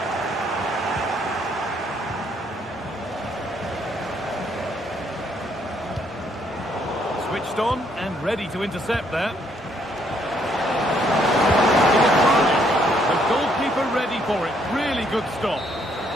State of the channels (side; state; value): both; normal; correlation 0.70